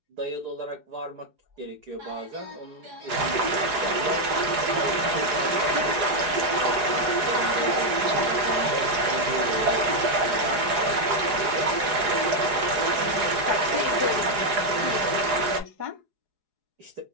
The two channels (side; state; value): left; late; 4.8 ms